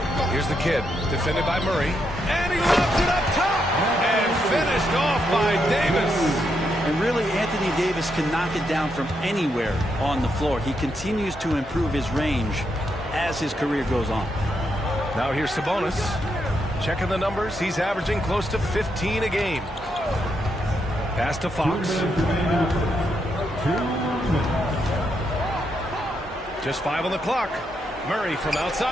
Here's the kid, defended by Murray. And he lobs it up top! And finished off by Davis. And really, Anthony Davis can knock it down from anywhere on the floor. He continues to improve his range as his career goes on. Now here's Sabonis. Checking the numbers, he's averaging close to 15 a game. Pass to Fox. Just 5 on the clock. Murray from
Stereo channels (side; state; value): both; normal; correlation 0.80